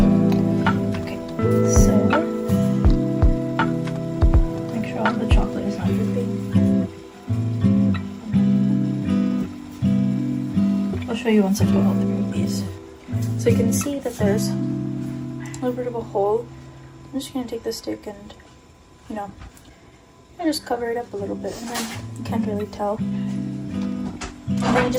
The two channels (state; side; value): identical; both; correlation 1.00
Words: it to the side. Show you once I put all 3 of these. So you can see that there's a little bit of a hole. I'm just going to take the stick and, you know, I just cover it up a little bit, and then you can't really tell. And then you